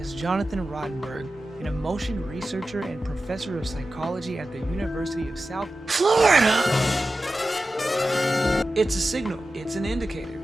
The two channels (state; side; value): normal; both; correlation 0.93